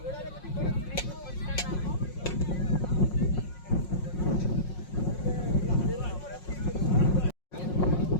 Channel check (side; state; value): right; late; 5.5 ms